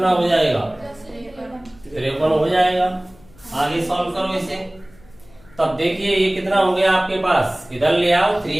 हो जाएगा? 53 हो जाएगा। आगे सॉल्व करो इसे, तब देखिए ये कितना हो गया आपके पास, इधर ले आओ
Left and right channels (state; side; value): noise; left; hum, 26 dB below the sound